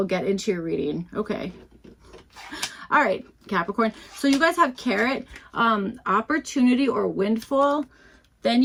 get into your reading. Okay. All right, Capricorn. So you guys have carrot, opportunity or windfall. Then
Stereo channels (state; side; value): identical; both; correlation 1.00